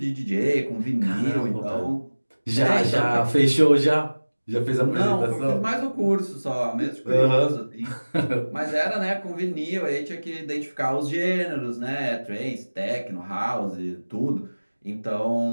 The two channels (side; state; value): both; inverted; correlation -1.00